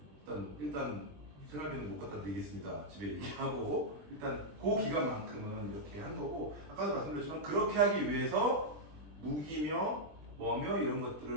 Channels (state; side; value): late; left; 20 ms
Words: 일단 생활비는 못 갖다 드리겠습니다. 집에 얘기하고 일단 그 기간만큼은 이렇게 한 거고 아까도 말씀드렸지만 그렇게 하기 위해서 무기며 뭐며 이런